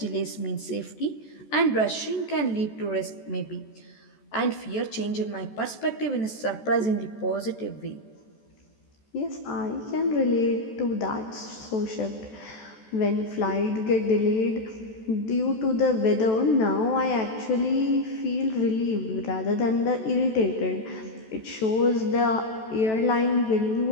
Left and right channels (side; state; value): right; late; 14 ms